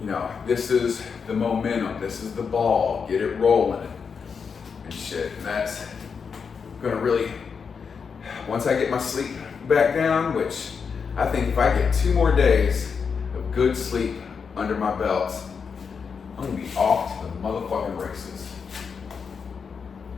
You know, this is the momentum, this is the ball, get it rolling and shit. And that's gonna really, once I get my sleep back down, which I think if I get 2 more days of good sleep under my belt, I'm gonna be off to the motherfucking races.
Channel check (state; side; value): quieter; right; 5.9 dB